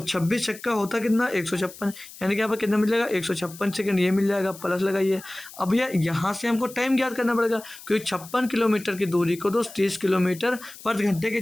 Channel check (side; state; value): left; noise; hiss, 17 dB below the sound